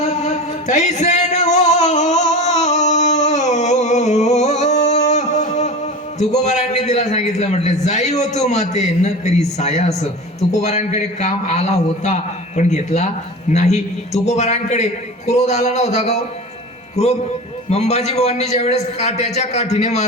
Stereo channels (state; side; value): normal; both; correlation 0.31